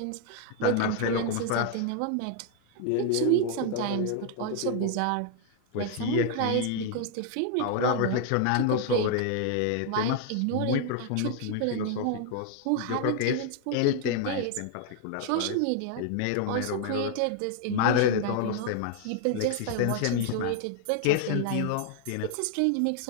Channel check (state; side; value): different; both; correlation 0.00